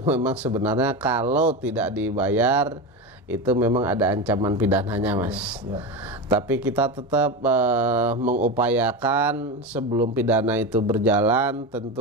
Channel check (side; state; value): both; normal; correlation 0.20